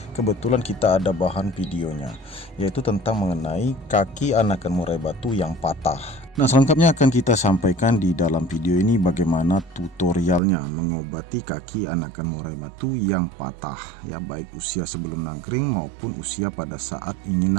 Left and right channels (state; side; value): drops out; left; at 10.4 s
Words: kebetulan kita ada bahan videonya, yaitu tentang mengenai kaki anakan murai batu yang patah. Nah, selengkapnya akan kita sampaikan di dalam video ini bagaimana tutorialnya mengobati kaki anakan murai batu yang patah ya, baik usia sebelum nangkring maupun usia pada saat ingin